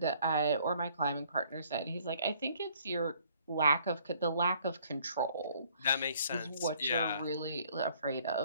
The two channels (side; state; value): both; inverted; correlation -0.61